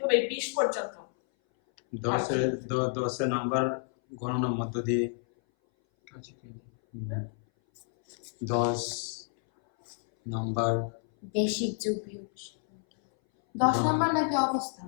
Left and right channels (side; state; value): right; silent; 58 dB below the other